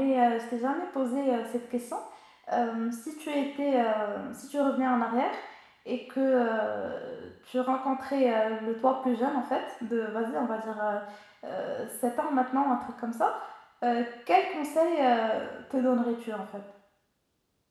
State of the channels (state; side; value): identical; both; correlation 1.00